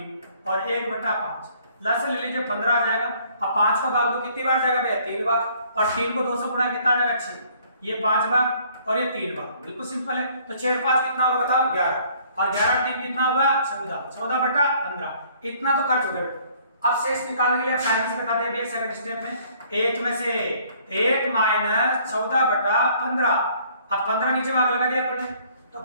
और 1/5 लस ले लीजिए, 15 आ जाएगा। अब 5 का भाग दो, कितनी बार जाएगा भैया? 3 बार, और 3 को 2 से गुणा कितना आ जाएगा? 6। ये 5 बार और ये 3 बार, बिल्कुल सिंपल है। तो 6 5 कितना होगा बताओ? 11, और 11 3 कितना होगा? 14, 14/15। इतना तो कर चुके बेटा। अब शेष निकालने के लिए टाइम से बताते हैं सेकंड स्टेप में। 1 में से 1 - 14/15। अब 15 नीचे भाग लगा दिया अपने, तो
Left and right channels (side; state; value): both; inverted; correlation -0.60